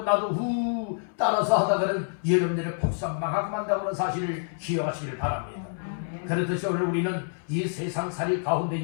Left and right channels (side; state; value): right; silent; 60 dB below the other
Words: 나도 따라서 하다가는 여러분들의 폭삭망하고 만다는 사실을 기억하시기를 바랍니다. 그렇듯이 오늘 우리는 이 세상살이